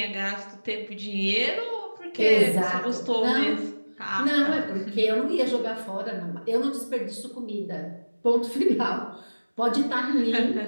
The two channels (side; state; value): both; inverted; correlation -1.00